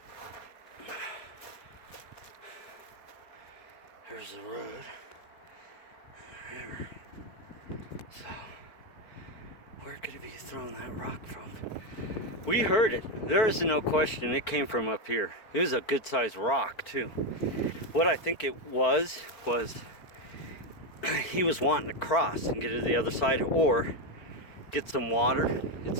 There's the road. There. So, where could he be throwing that rock from? We heard it. There is no question. It came from up here. It was a good sized rock, too. What I think it was he was wanting to cross and get to the other side or get some water.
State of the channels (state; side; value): late; right; 4.6 ms